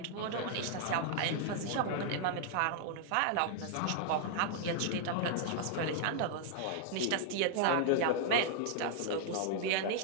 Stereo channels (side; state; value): both; different; correlation -0.01